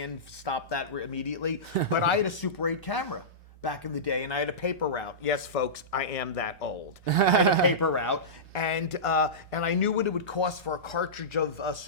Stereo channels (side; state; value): both; normal; correlation -0.18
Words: Stopped that immediately. But I had a Super 8 camera back in the day, and I had a paper route. Yes, folks, I am that old. I had a paper route, and I knew what it would cost for a cartridge of